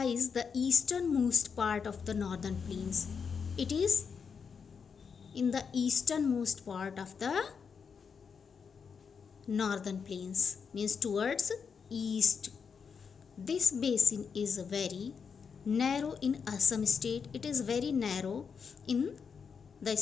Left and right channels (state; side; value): quieter; right; 6.1 dB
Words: the easternmost part of the northern plains. It is in the easternmost part of the northern plains, means towards east. This basin is very narrow in Assam state. It is very narrow in the